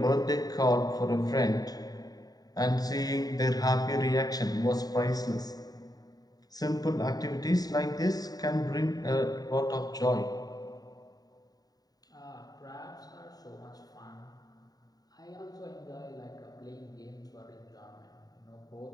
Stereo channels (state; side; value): late; right; 0.18 ms